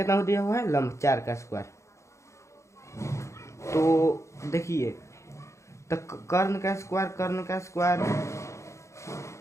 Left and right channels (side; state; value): right; late; 0.14 ms